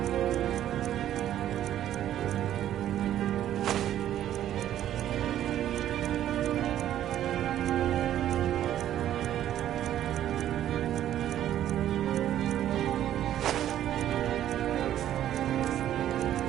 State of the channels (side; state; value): left; quieter; 11.7 dB